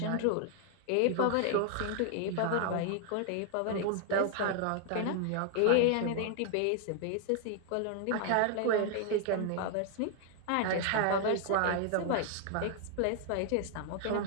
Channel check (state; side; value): different; both; correlation 0.00